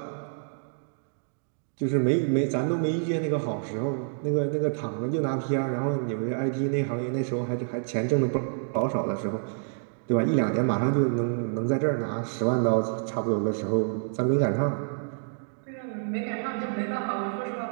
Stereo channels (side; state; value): left; silent; 59 dB below the other